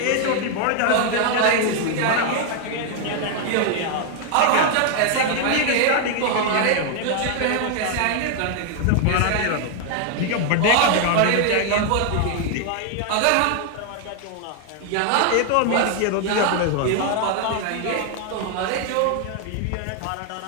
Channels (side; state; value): both; different; correlation 0.00